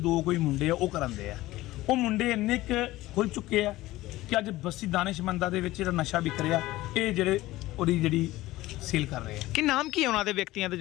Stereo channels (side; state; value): right; quieter; 17.4 dB